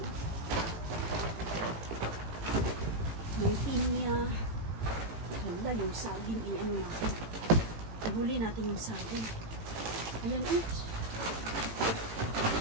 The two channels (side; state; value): left; late; 18 ms